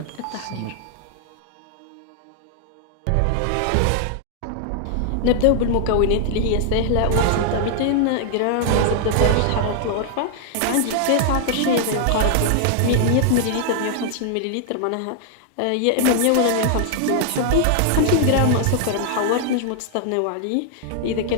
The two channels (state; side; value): different; both; correlation -0.01